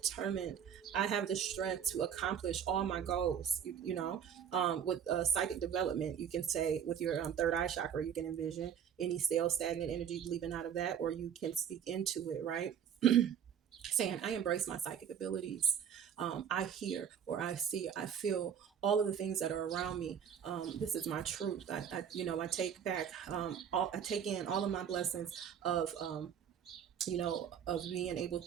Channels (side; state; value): left; quieter; 8.4 dB